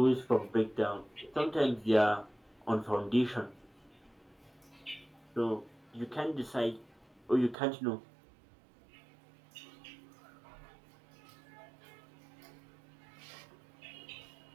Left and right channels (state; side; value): drops out; left; at 7.6 s